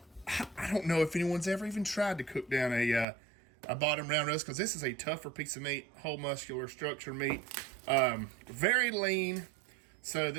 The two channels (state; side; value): drops out; left; at 3.1 s